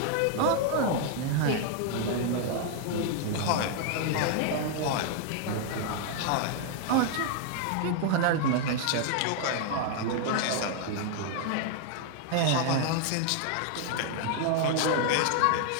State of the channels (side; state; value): both; different; correlation 0.00